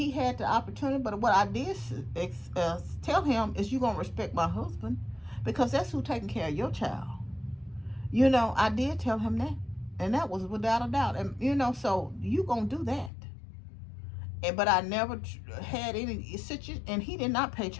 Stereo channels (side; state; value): right; drops out; at 13.1 s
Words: had the opportunity, but what I did tell him is, you're going to respect my husband, because that's who's taking care of your child. You know, I did tell him that, and that was without a doubt. And, you know, so you going to do that. But I never had any situation, and he did not pay